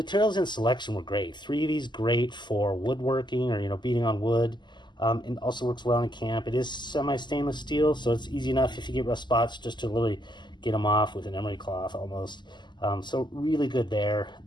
and selection were great. 3V's great for woodworking or, you know, beating on wood. It also works well in camp. It is semi-stainless steel, so it's easy enough if you get rough spots just to really get them off with an emery cloth almost. So really good there.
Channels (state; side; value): late; right; 0.21 ms